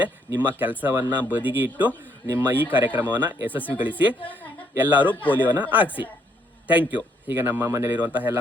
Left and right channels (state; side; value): normal; both; correlation 0.71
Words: ನಿಮ್ಮ ಕೆಲಸವನ್ನು ಬದಿಗೆ ಇಟ್ಟು ನಿಮ್ಮ ಈ ಕಾರ್ಯಕ್ರಮವನ್ನು ಯಶಸ್ವಿಗೊಳಿಸಿ. ಎಲ್ಲರೂ ಪೋಲಿಯೋನ ಹಾಕ್ಸಿ. Thank you. ಈಗ ನಮ್ಮ ಮನೆಯಲ್ಲಿರುವಂತಹ ಎಲ್ಲ